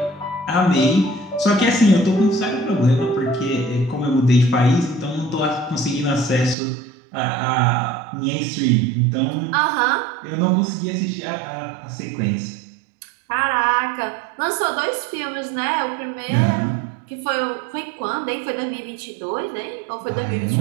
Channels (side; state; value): left; drops out; at 6.6 s